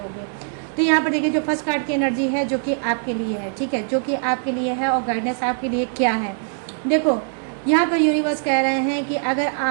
तो यहाँ पर देखिए जो फर्स्ट कार्ड की एनर्जी है जो कि आपके लिए है, ठीक है, जो कि आपके लिए है और गाइडेंस आपके लिए क्या है। देखो यहाँ पर यूनिवर्स कह रहे हैं कि अगर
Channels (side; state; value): left; silent; digital silence